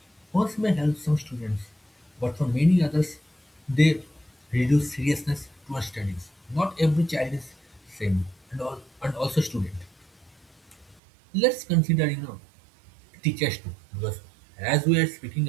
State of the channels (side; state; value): left; drops out; at 11.0 s